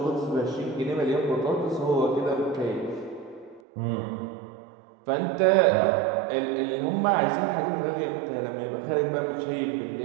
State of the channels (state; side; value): drops out; left; at 3.6 s